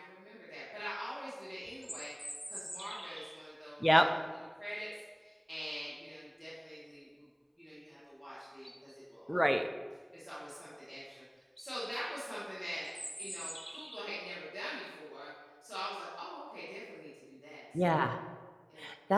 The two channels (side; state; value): both; identical; correlation 1.00